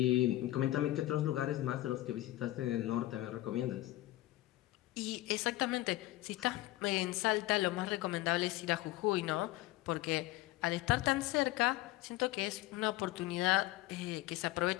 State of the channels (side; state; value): right; quieter; 16.7 dB